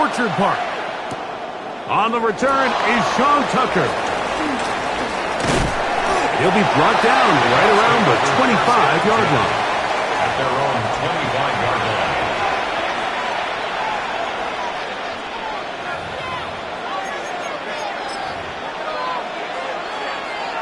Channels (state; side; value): identical; both; correlation 1.00